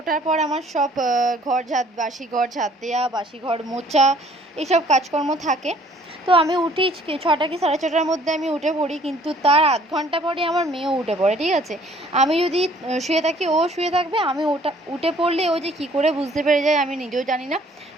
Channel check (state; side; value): normal; both; correlation 0.57